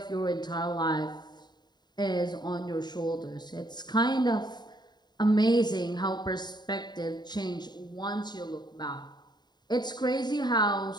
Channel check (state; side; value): late; right; 0.21 ms